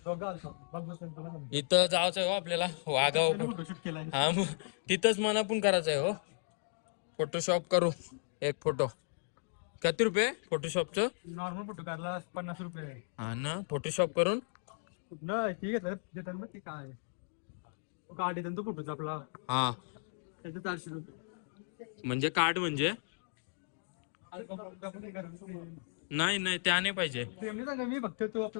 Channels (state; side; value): silent; right; digital silence